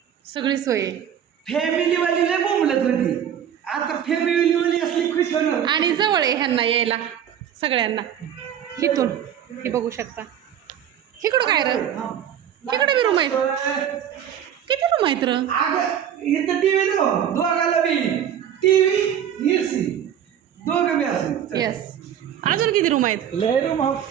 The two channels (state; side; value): quieter; left; 9.5 dB